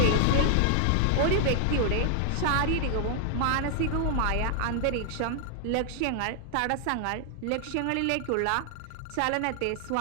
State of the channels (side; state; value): both; different; correlation 0.00